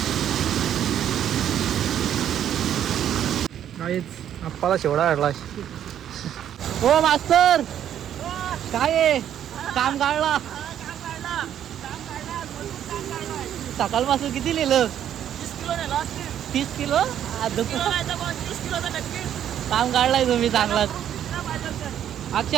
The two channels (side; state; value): left; quieter; 10.2 dB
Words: काहीच आप्पाला शिवडा काढला. हो मास्तर काय आहे? काम काढला सकाळपासून. किती लिहिलं? 30 किलो. काम काढलाय तुम्ही चांगलाच.